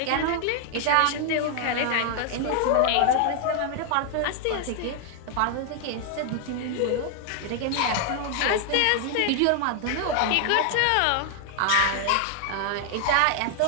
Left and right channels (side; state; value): both; different; correlation 0.00